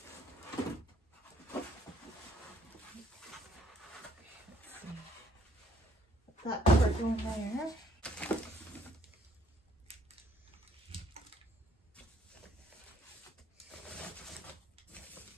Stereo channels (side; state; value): both; normal; correlation 0.65